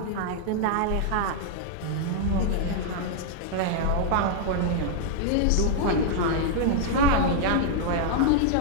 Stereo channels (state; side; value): different; both; correlation -0.01